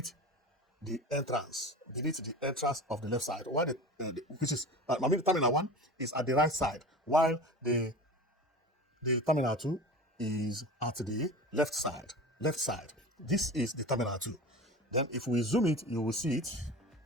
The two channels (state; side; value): normal; both; correlation 0.33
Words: the entrance of the left side, while which is Terminal 1 is at the right side, while the Terminal 2 is at the left side. This is the Terminal 2. Then if we zoom it, you will see it.